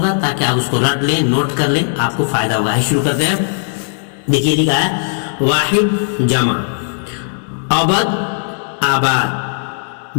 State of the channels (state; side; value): silent; right; digital silence